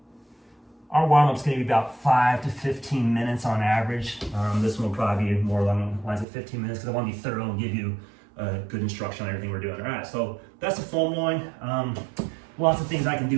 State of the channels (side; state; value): left; drops out; at 6.2 s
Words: Our warm-up's going to be about 5 to 15 minutes on average. This one will probably be more along the lines of 15 minutes because I want to be thorough and give you good instruction on everything we're doing. All right, so that's the foam rolling. Lots of things I can do